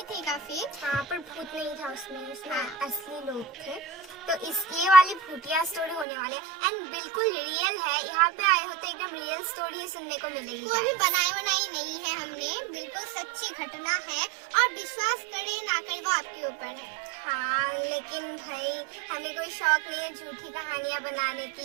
थी काफी। हाँ, पर भूत नहीं था उसमें असली लोग थे। तो ये वाली भूतिया स्टोरी होने वाले है एंड बिल्कुल रियल है। यहाँ पे आए हो तो एकदम रियल स्टोरी ही सुनने को मिलेगी। वो भी बनाई नहीं है हमने, बिल्कुल सच्ची घटना है और विश्वास करे ना करे वो आपके ऊपर है। हाँ, लेकिन भाई हमें कोई शौक नहीं है झूठी कहानियाँ बनाने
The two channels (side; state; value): left; drops out; at 6.1 s